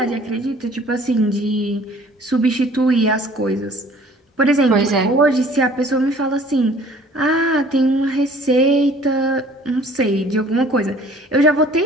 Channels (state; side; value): normal; both; correlation 0.53